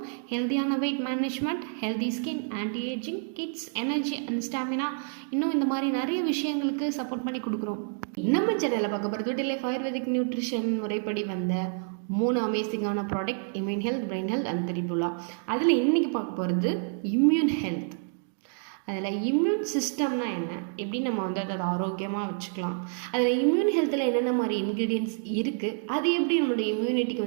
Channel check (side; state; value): left; silent; 59 dB below the other